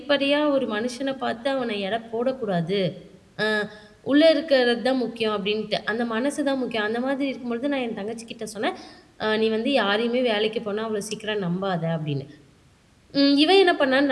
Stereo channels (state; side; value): identical; both; correlation 1.00